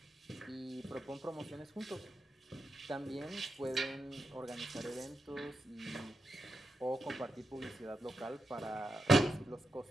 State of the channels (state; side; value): normal; both; correlation 0.86